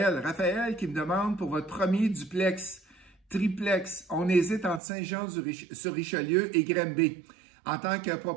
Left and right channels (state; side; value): drops out; left; at 4.8 s